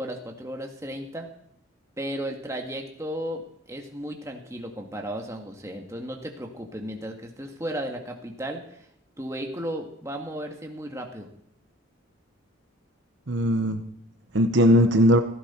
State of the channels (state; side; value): normal; both; correlation 0.49